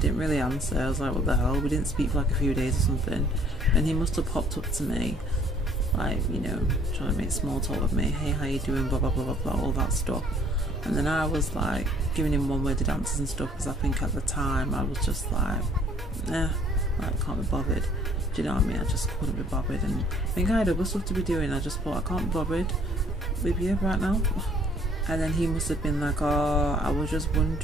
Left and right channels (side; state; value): both; normal; correlation 0.58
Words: didn't really answer. I was like, what the hell? We didn't speak for like a few days or something, and he must have popped up to me, like, you know, trying to make small talk with me. Hey, how you doing? Blah blah blah blah blah, all that stuff. And then I was like giving him one-worded answers and stuff, because I think at the time I was just like, like, can't be bothered. Do you know what I mean? I just couldn't be bothered, and I think I had other stuff to be doing. I just thought, I can't be bothered with you right now. And then he must have been like, oh, I was just